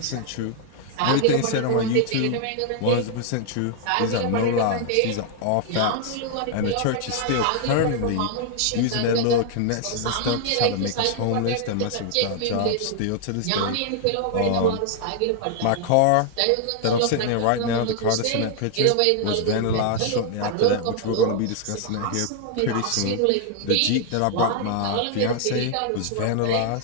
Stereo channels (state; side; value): different; both; correlation 0.00